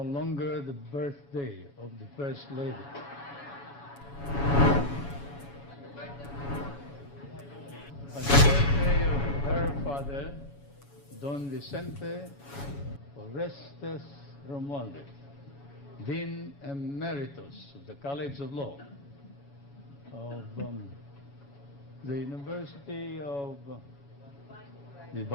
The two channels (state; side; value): late; right; 7.1 ms